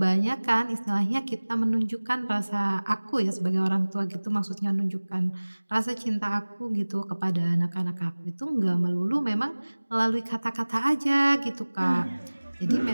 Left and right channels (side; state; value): both; inverted; correlation -1.00